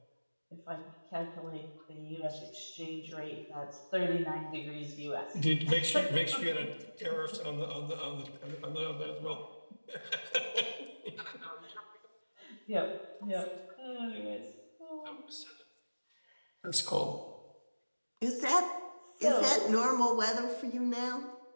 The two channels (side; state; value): both; inverted; correlation -1.00